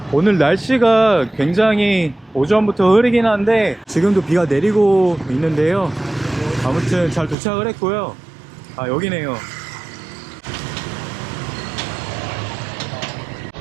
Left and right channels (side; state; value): left; drops out; at 7.4 s